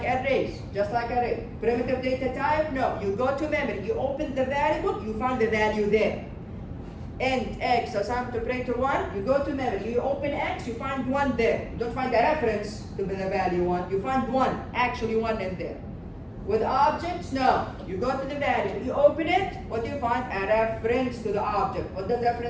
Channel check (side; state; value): both; identical; correlation 1.00